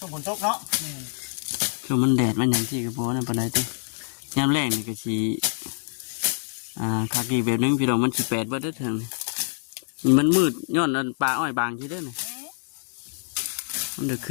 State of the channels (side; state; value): right; silent; 61 dB below the other